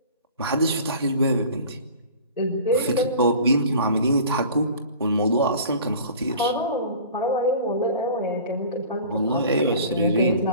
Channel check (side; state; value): both; inverted; correlation -0.43